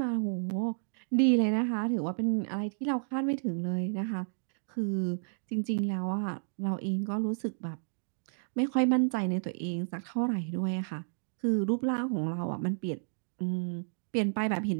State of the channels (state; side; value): silent; left; digital silence